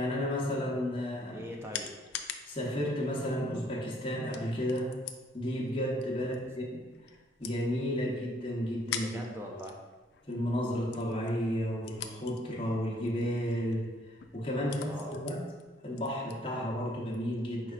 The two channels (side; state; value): both; normal; correlation 0.64